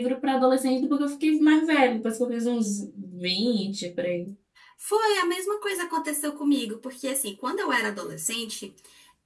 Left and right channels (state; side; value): identical; both; correlation 1.00